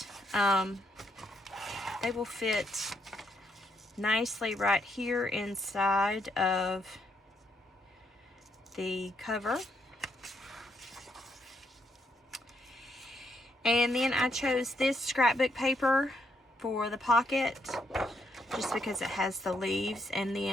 they will fit nicely right here inside of the cover. And then I chose this scrapbook paper for the pocket, just because it has the leaves, and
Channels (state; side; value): normal; both; correlation 0.75